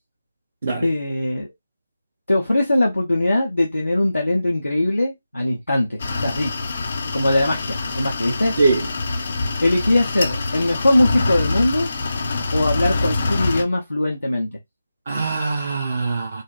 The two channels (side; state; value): both; inverted; correlation -0.92